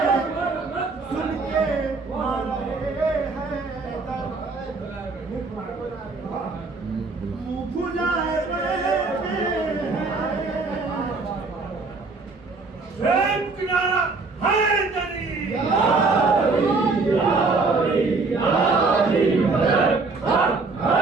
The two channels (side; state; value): left; quieter; 4.0 dB